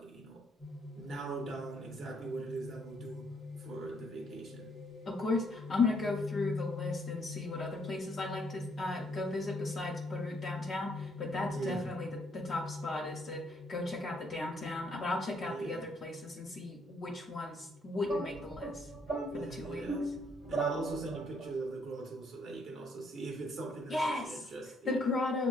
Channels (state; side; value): normal; both; correlation 0.70